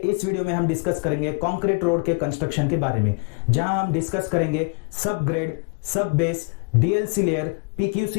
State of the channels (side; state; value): right; quieter; 32.9 dB